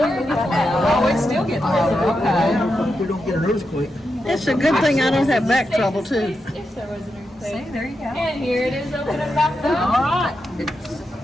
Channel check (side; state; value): both; normal; correlation 0.87